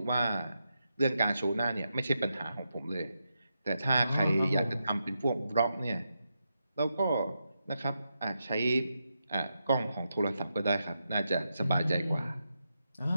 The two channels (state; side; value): inverted; both; correlation -0.86